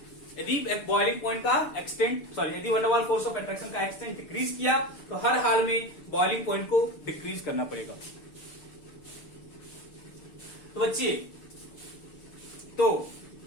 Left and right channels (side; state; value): right; late; 6.8 ms